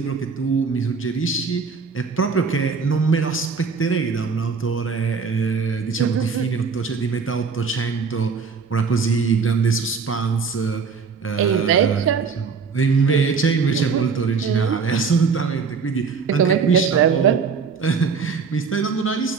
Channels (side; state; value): left; quieter; 5.4 dB